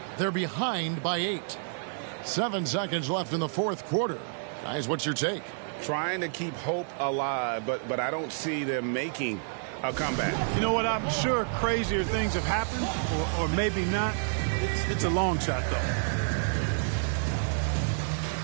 They're behind by 8. 7 seconds left in the fourth quarter. Guys, what's your take? Trying to keep hope alive, but I don't see them making a comeback. You know what? I'm sure crazier things have happened, or maybe not. It's a long shot, though.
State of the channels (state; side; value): silent; left; digital silence